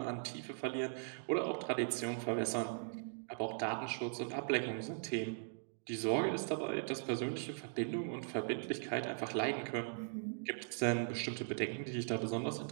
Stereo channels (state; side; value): silent; left; digital silence